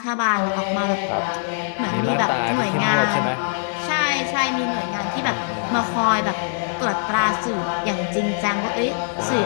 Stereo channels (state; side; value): silent; right; digital silence